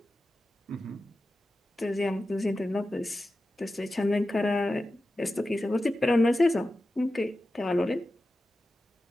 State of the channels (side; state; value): both; normal; correlation 0.93